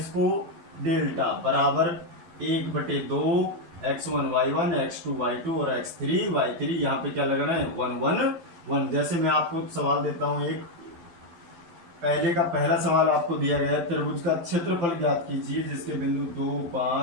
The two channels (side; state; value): left; late; 12 ms